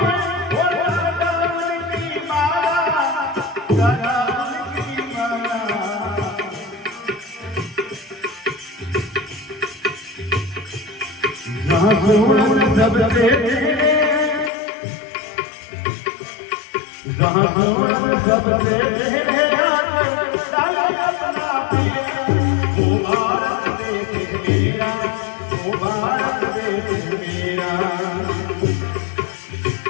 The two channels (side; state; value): right; drops out; at 14.5 s